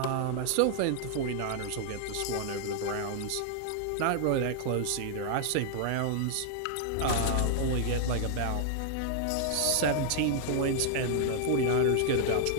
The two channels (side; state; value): both; different; correlation -0.01